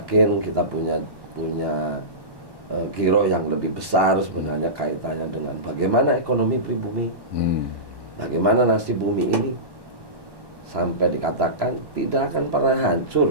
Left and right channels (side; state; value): left; late; 1.1 ms